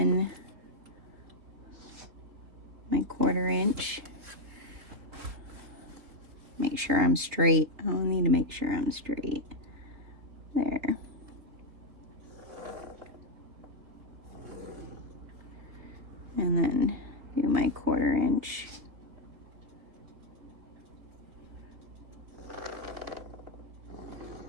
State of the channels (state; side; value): late; left; 3.8 ms